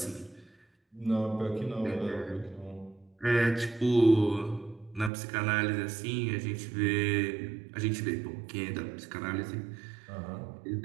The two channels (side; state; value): left; drops out; at 5.1 s